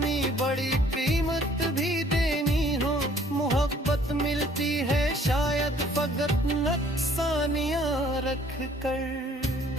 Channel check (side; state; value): both; normal; correlation 0.58